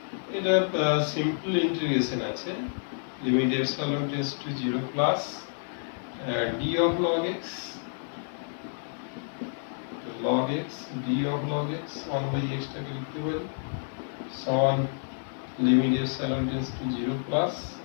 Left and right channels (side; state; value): right; silent; digital silence